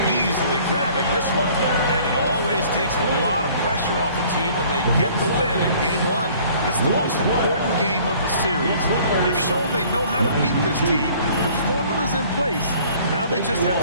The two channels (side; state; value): both; inverted; correlation -0.54